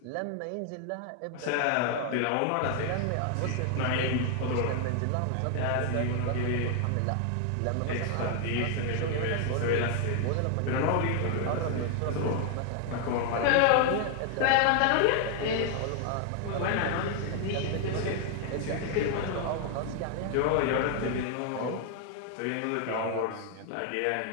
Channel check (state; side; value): different; both; correlation 0.00